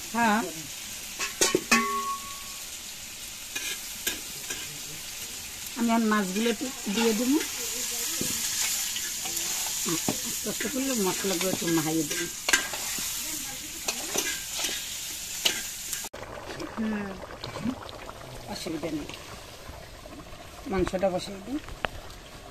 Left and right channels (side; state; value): both; identical; correlation 1.00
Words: হ্যাঁ আমি আর মাছগুলো দিয়ে দেবো, আস্তে আস্তে করলে মশলাগুলো একটু মাহাইয়ে দেবো। অসুবিধা নেই, মাংসটা বসিয়ে দিই।